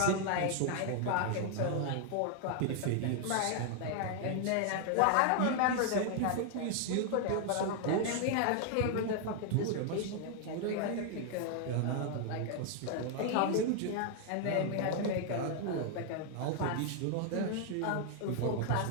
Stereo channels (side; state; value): both; different; correlation 0.00